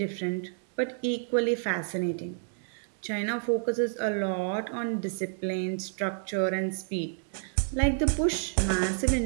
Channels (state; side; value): silent; left; 58 dB below the other